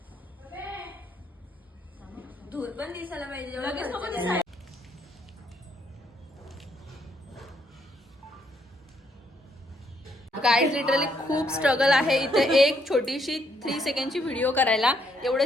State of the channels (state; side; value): normal; both; correlation 0.72